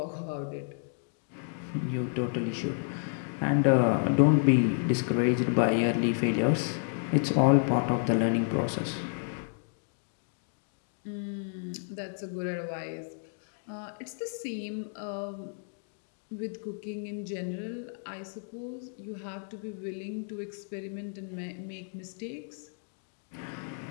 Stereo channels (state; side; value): silent; right; 57 dB below the other